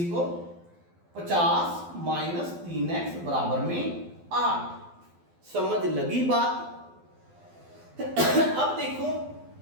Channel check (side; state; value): left; late; 12 ms